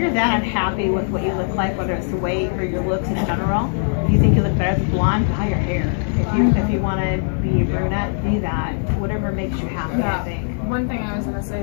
that unhappy with what you look like, whether it's the weight or your looks in general, if you think you look better as a blonde, dye your hair. If you want to be a brunette, be that. Whatever makes you happy, I think. One thing I was going to say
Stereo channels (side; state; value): right; silent; digital silence